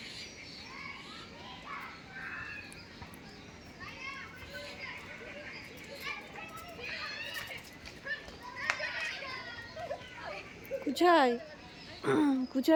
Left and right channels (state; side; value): identical; both; correlation 1.00